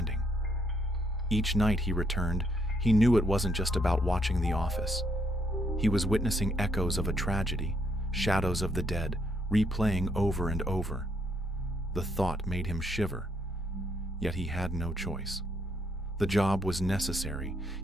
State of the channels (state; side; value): normal; both; correlation 0.74